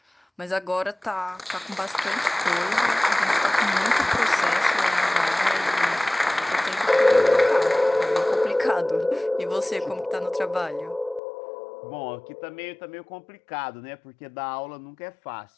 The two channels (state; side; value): drops out; right; at 11.2 s